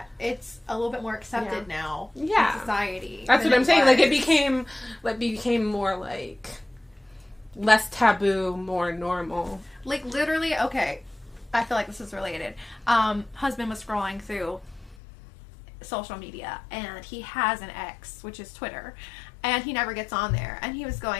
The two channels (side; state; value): right; drops out; at 15.0 s